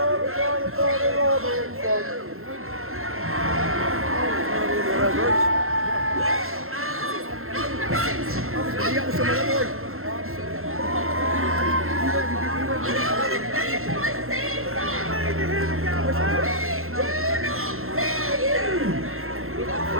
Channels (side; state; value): left; late; 0.62 ms